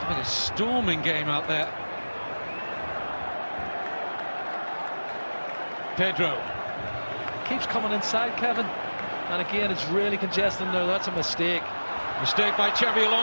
a storming game out there. Pedro. Keeps coming inside, Kevin, and again it's really congested there. That's a mistake. Mistake by Xabi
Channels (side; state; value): both; inverted; correlation -1.00